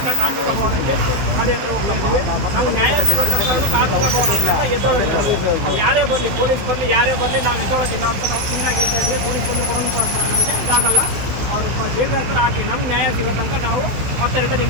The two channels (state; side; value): late; left; 16 ms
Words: ಕಾರ್ಮಿಕ ಭವನಕ್ಕೆ ಗಾಡಿ ಹತ್ರ ಹೋಗ್ತಾ ಇದ್ವಿ. ನಾವು ನ್ಯಾಯ ಸಿಗೋ ತನಕ ಕಾರ್ಮಿಕ ಭವನ ಹತ್ರ ಎದ್ದೋಳೋದಿಲ್ಲ. ಯಾರೇ ಬರಲಿ, ಪೊಲೀಸ್ ಬರಲಿ, ಯಾರೇ ಬರಲಿ, ನಾವು ಎದ್ದೋಳೋದಿಲ್ಲ ಅಂತ ನಾವು ಸುಮ್ಮನಾಗಿ ಹೇಳ್ತಾ ಇದ್ವಿ. ಪೊಲೀಸ್ ಬಂದು ಕೊಡೋದು ಇದಾಗಲ್ಲ, ಅವ್ರು ಜೈಲ್ ಹತ್ರ ಹಾಕಿ ನಮ್ಗೆ ನ್ಯಾಯ ಸಿಗೋ ತನಕ ನಾವು ಮತ್ತೆ ರಿಟರ್ನ್